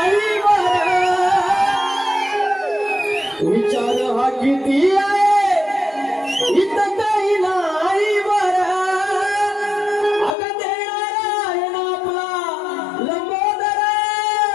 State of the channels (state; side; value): drops out; right; at 10.4 s